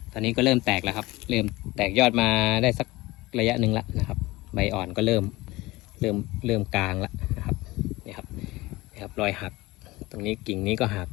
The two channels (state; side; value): quieter; right; 20.2 dB